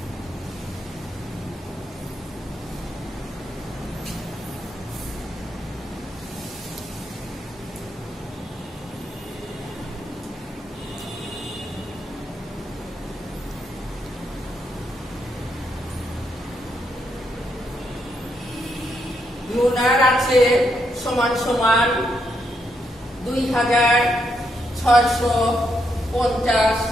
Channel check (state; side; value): normal; both; correlation 0.79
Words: লুনার আছে সমান সমান 2,650